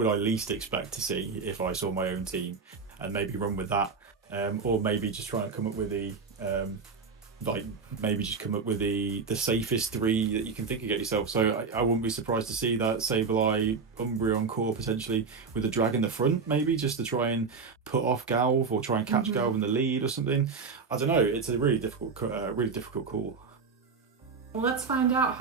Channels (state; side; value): quieter; left; 5.0 dB